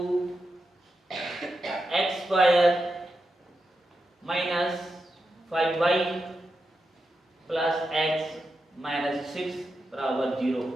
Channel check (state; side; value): normal; both; correlation 0.88